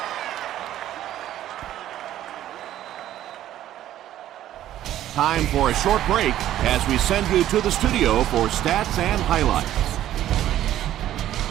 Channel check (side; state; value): left; quieter; 12.6 dB